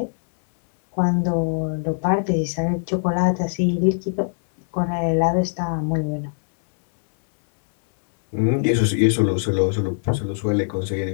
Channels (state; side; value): silent; right; 65 dB below the other